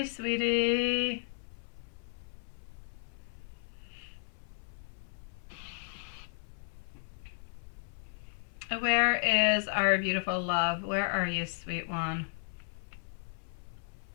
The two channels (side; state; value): right; silent; 55 dB below the other